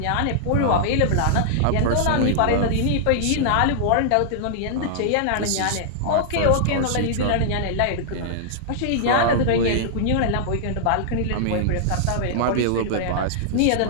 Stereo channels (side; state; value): both; different; correlation -0.01